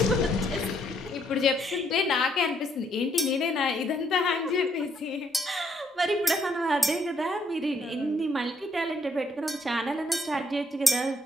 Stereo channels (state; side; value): normal; both; correlation 0.71